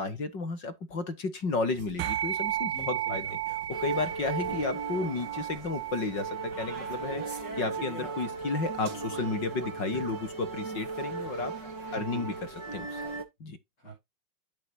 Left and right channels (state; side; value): late; right; 5.5 ms